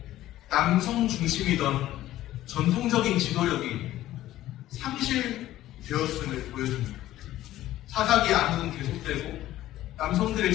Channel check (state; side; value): quieter; right; 14.4 dB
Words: 남성 중심이던 전통적인 지도력이 상실되었음을 보여줍니다. 사사기 암흑은 계속되고 남성들의